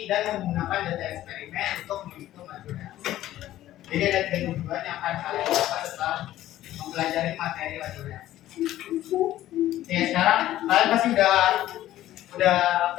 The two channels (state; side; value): quieter; right; 13.9 dB